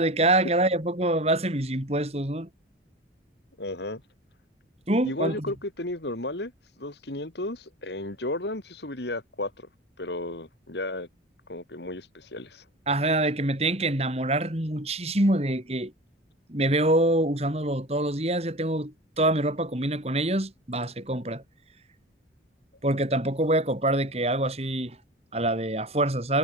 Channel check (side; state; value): both; normal; correlation 0.32